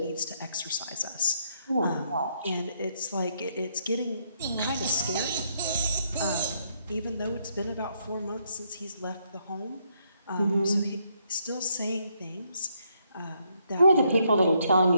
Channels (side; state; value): both; inverted; correlation -0.74